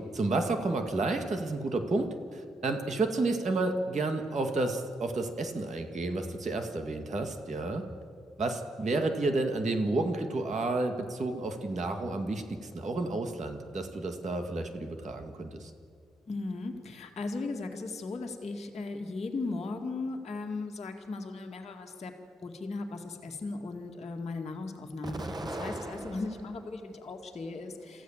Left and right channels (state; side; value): normal; both; correlation 0.78